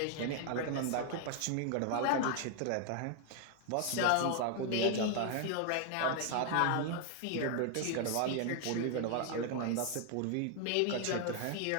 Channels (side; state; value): both; different; correlation 0.00